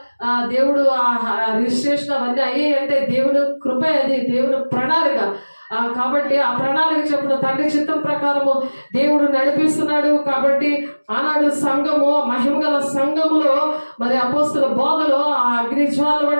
దేవుడు రిజిస్ట్రేషన్ అవన్నీ అయ్యాయి అంటే దేవుని కృప, అది దేవుని ప్రణాళిక. కాబట్టి ఆ ప్రణాళిక చెప్పిన తండ్రి చిత్తం ప్రకారము దేవుడు నడిపిస్తున్నాడు. కాబట్టి ఆనాడు సంఘము మహిమగల సంఘములో మరి అపోస్తుల బోధలో ఆ అగ్నిజ్వాల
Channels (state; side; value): inverted; both; correlation -1.00